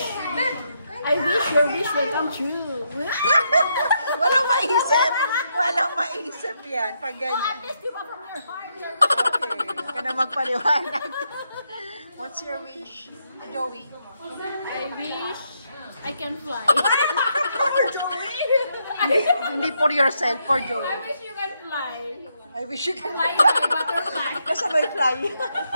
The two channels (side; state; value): both; inverted; correlation -0.79